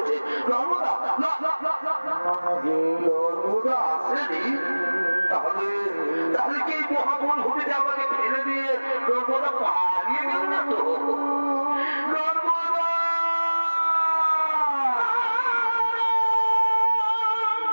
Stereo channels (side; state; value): both; inverted; correlation -1.00